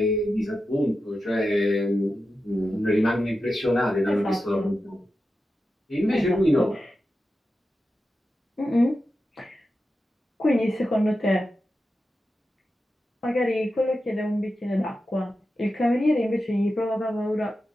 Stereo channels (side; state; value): both; normal; correlation 0.91